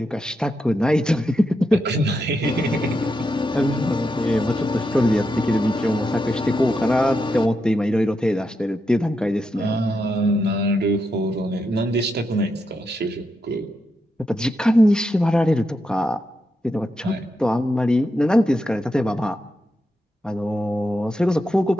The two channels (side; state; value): both; normal; correlation 0.85